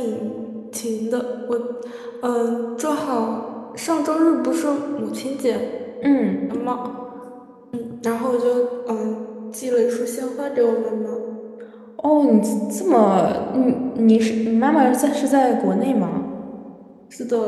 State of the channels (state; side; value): identical; both; correlation 1.00